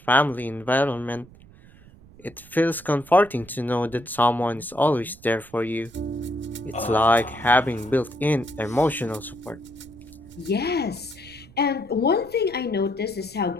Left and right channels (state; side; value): noise; right; rumble, 23 dB below the sound